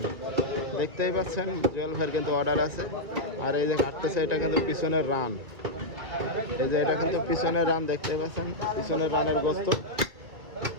দেখতেই পাচ্ছেন জুয়েল ভাইয়ের কিন্তু অর্ডার আছে। আর এই যে কাটতেছে, এটা কিন্তু পিছনের রান। এই যে এটা কিন্তু পিছনের রান, দেখতেই পাচ্ছেন পিছনের রানের গোস্ত।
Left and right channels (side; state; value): left; late; 1.6 ms